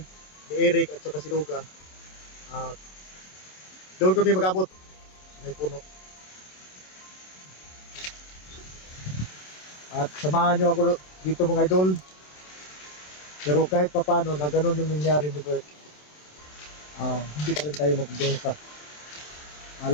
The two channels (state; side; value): late; right; 27 ms